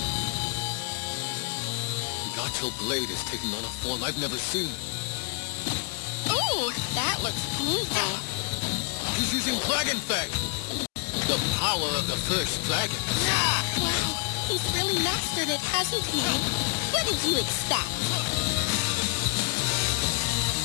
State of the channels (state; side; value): quieter; right; 37.0 dB